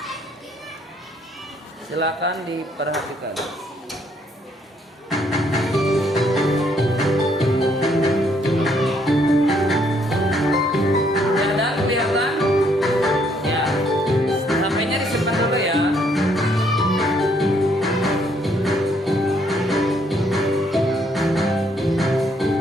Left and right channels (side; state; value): both; normal; correlation 0.69